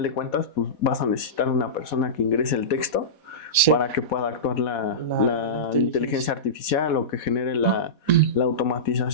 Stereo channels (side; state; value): right; late; 4.2 ms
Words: de cuentas, pues vas a necesitar una persona que ingrese el texto Sí. para que pueda actuar la inteligencia artificial o que genere la